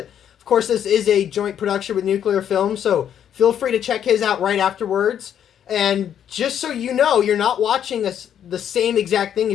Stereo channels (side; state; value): right; quieter; 9.4 dB